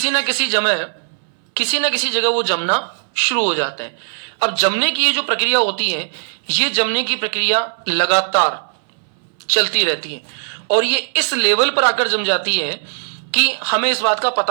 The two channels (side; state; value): left; silent; 62 dB below the other